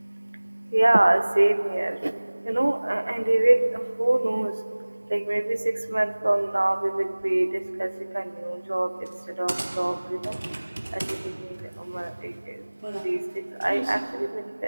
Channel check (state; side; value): inverted; both; correlation -1.00